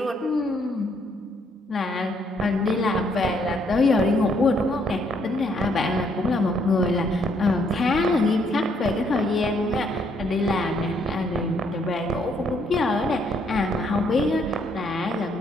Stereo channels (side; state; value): both; normal; correlation 0.70